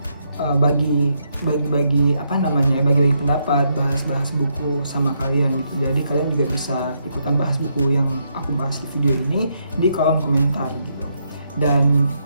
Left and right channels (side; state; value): both; inverted; correlation -0.78